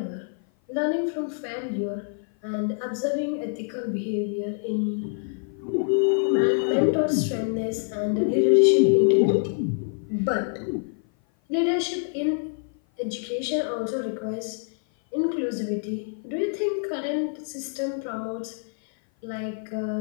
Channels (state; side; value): silent; right; 56 dB below the other